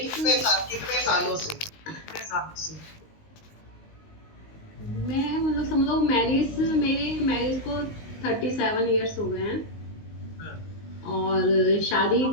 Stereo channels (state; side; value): late; right; 19 ms